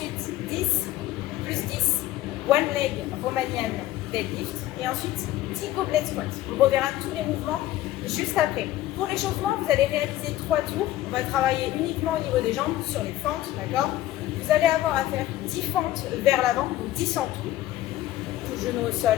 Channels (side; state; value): right; quieter; 14.5 dB